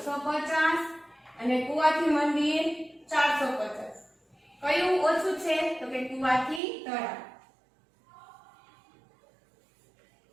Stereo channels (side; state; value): left; drops out; at 6.6 s